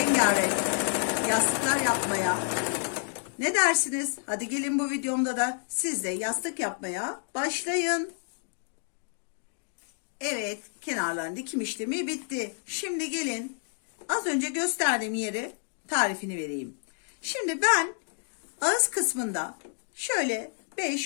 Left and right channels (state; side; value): silent; right; 58 dB below the other